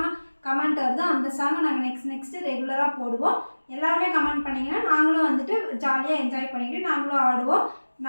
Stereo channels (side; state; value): both; inverted; correlation -1.00